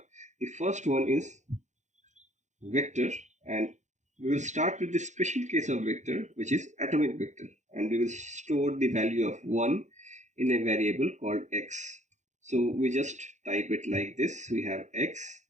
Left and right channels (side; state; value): left; late; 0.34 ms